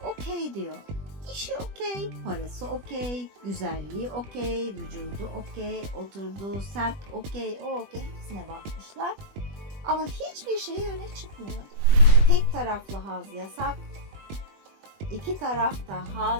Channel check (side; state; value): left; late; 20 ms